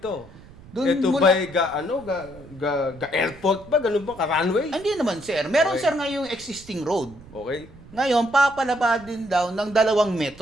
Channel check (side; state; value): right; noise; rumble, 21 dB below the sound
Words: Dun Ito mula- ba'y airport ba? Ganun ba? Ka-runway? Hindi naman, sir. Meron, Okay. sir, ngayong existing road. Okay. Ngayon, papalapadin daw ng 2